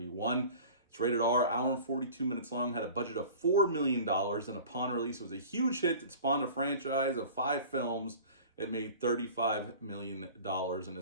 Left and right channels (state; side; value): inverted; both; correlation -0.41